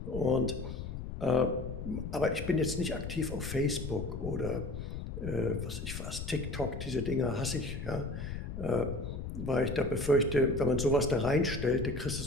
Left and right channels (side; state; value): left; noise; rumble, 6 dB below the sound